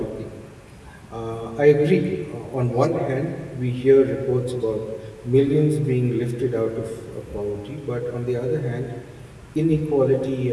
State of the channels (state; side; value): identical; both; correlation 1.00